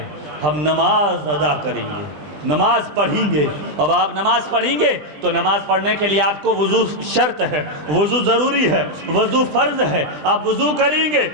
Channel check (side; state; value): left; late; 20 ms